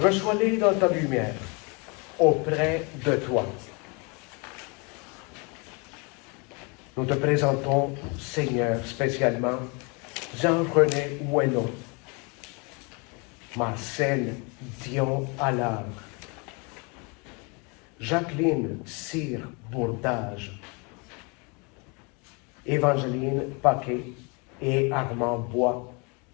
dans ta lumière, auprès de toi. Nous te présentons, Seigneur, spécialement Jean-René Ouello, Marcel Dion Allard, Jacqueline Cyr Bourdage, Évangeline Paquet et Armand Bois,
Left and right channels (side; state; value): right; quieter; 31.3 dB